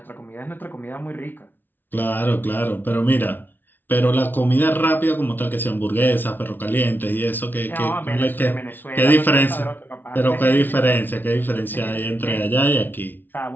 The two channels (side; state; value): right; late; 0.092 ms